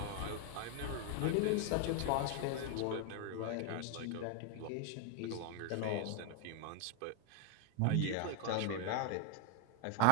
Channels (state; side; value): different; both; correlation 0.01